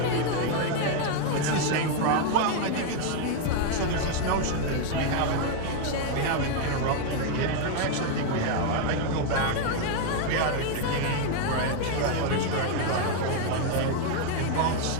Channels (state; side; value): different; both; correlation 0.01